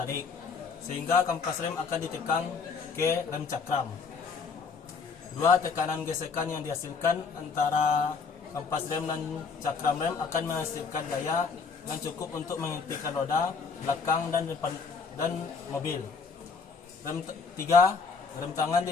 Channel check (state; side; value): quieter; right; 5.2 dB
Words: sehingga kampas rem akan ditekan ke rem cakram. 2. Tekanan gesekan yang dihasilkan antara kampas rem dan cakram rem akan menghasilkan daya yang cukup untuk menghentikan roda belakang dan depan dan mobil. 3. Rem tangan